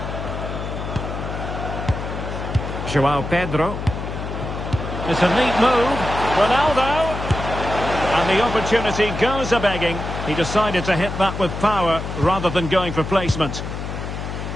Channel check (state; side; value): noise; left; hum, 6 dB below the sound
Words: Joao Pedro. It's a neat move. Ronaldo. And the opportunity goes a-begging. He decided to hit that with power rather than going for placement.